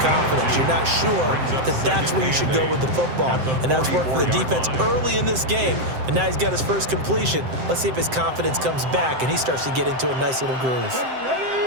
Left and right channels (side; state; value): left; late; 7.7 ms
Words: You're not sure that that's where you should go with the football, and that's worked for the defense early in this game. And now he's got his first completion. Let's see if his confidence comes back and he starts to get into a nice little groove.